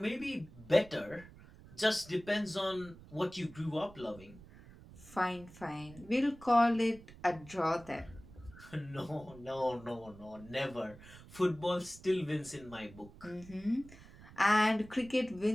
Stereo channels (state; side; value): noise; right; rumble, 19 dB below the sound